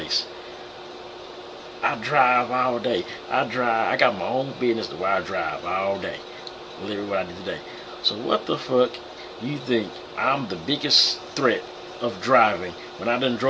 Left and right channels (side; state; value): both; identical; correlation 1.00